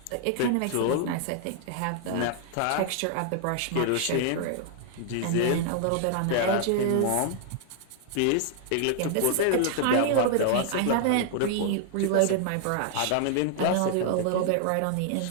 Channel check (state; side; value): different; both; correlation 0.00